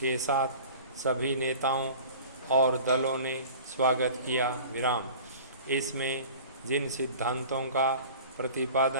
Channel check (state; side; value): inverted; both; correlation -0.41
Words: साथ सभी नेताओं और दलों ने स्वागत किया। विराम। इसमें जिन सिद्धांतों का